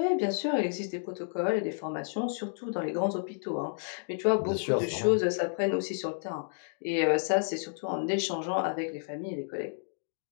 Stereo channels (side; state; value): right; silent; digital silence